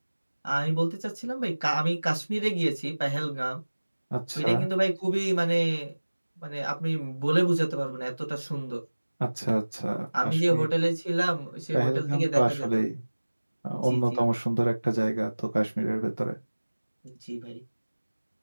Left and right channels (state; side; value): inverted; both; correlation -1.00